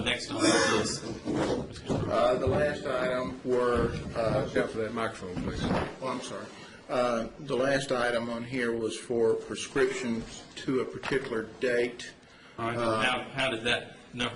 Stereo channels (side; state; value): both; identical; correlation 1.00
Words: on the list? The last item were, Watch out for that microphone, please. I'm sorry. The last item on here was for prescriptions to a particular date. All right. How did that